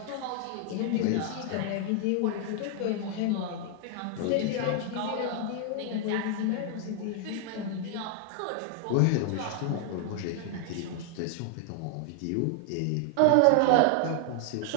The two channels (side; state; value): both; different; correlation 0.00